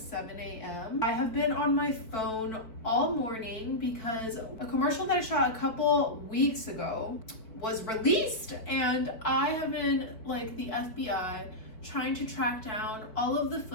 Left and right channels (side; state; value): right; late; 4.5 ms